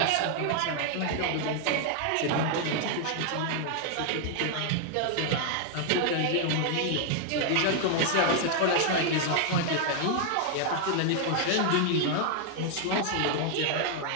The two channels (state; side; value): different; both; correlation 0.00